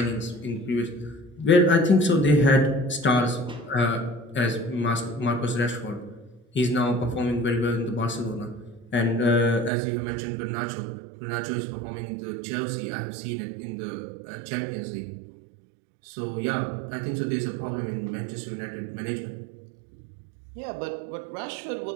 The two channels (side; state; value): left; drops out; at 9.7 s